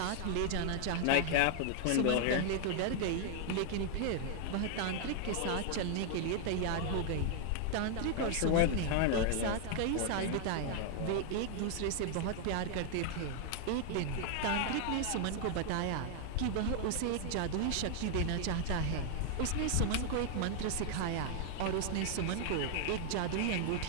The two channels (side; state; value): both; different; correlation 0.00